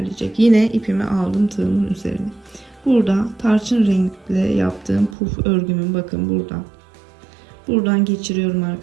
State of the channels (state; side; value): drops out; left; at 5.2 s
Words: Yine ipimi aldım tığımın üzerine. Burada tarçın renkle yaptığım puf örgümün bakın buradan geçiriyorum